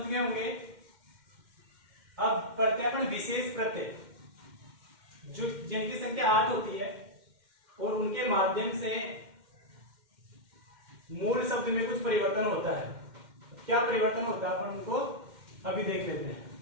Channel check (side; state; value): left; late; 2.1 ms